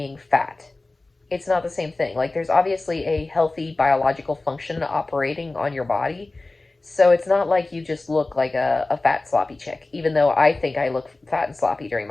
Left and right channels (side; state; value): right; quieter; 3.1 dB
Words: fat. it's not the same thing. Like, there's obviously a healthy biological function operating on your body. So it's not like you just look like a fat, sloppy chick, even though I think I look fat and sloppy during